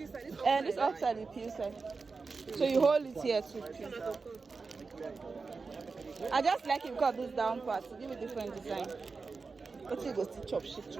side? This outside the peel side. So you hold it here too. I just like it because this down part to give it different design. But you go to chop shit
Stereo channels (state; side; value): quieter; left; 4.4 dB